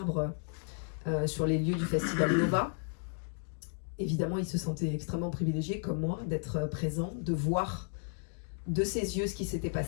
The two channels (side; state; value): right; silent; 55 dB below the other